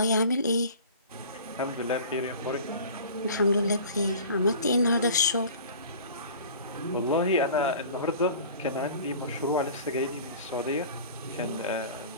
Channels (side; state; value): both; inverted; correlation -0.43